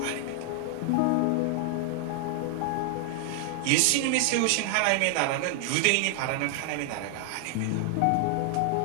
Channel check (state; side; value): different; both; correlation 0.00